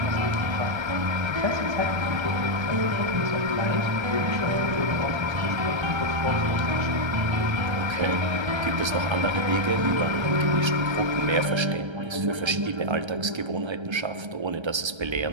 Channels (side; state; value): left; late; 1.3 ms